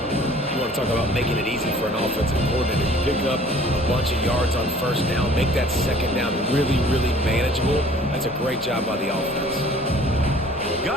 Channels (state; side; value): normal; both; correlation 0.52